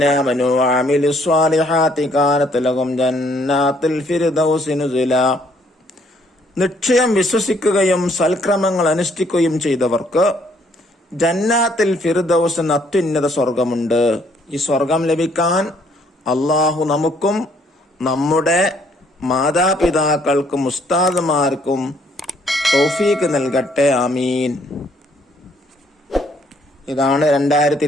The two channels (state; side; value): normal; both; correlation 0.66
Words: ആമനൂ വഅമിലുസ് സ്വാലിഹാത്തി കാനത് ലഹും ജന്നാത്തുൽ ഫിർദൗസി നുസുലാ. നിശ്ചയം വിശ്വസിക്കുകയും സൽക്രമങ്ങൾ അനുഷ്ഠിക്കുകയും ചെയ്തവർക്ക് ജന്നാത്തുൽ ഫിർദൗസ് എന്ന അത്യുന്നത സ്വർഗമുണ്ട്. ഈ സ്വർഗം ലഭിക്കാൻ അള്ളാഹു നമുക്കും നമ്മുടെ മാതാപിതാക്കൾക്കും ഉസ്താദുമാർക്കും തൗഫീഖ് നൽകട്ടെ. ആമീൻ. ഇതാണ്